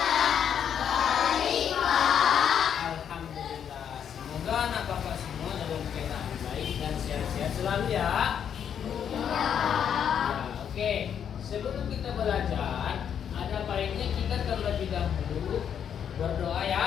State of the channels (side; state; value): right; quieter; 8.4 dB